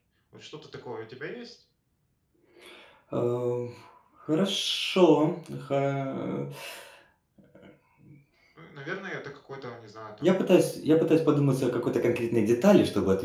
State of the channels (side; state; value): both; identical; correlation 1.00